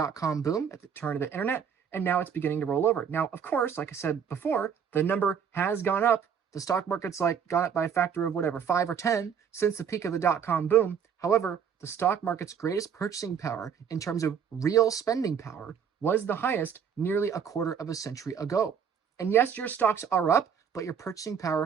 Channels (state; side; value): quieter; left; 7.5 dB